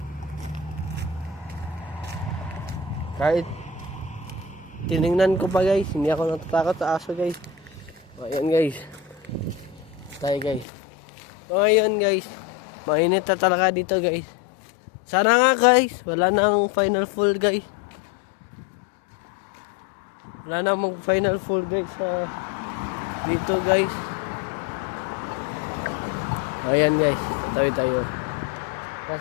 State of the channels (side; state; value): right; drops out; at 10.7 s